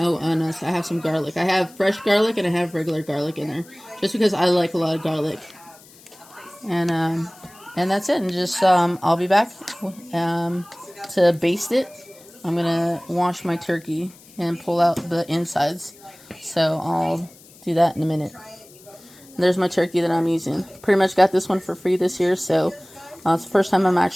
have some garlic. I have fresh garlic and I have regular garlic in there, just because I like a lot of garlic. And that's it. And just, I'll be back to baste it. I'm going to wash my turkey and pull out the insides. So I'll do that in a minute. And there's my turkey that I'm using. Pretty much got this one for free this year. So it's the first time I'm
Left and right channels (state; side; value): noise; left; hiss, 24 dB below the sound